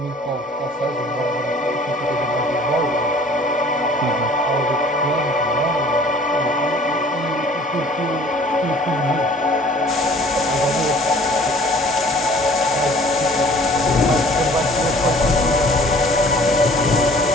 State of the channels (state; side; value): normal; both; correlation 0.52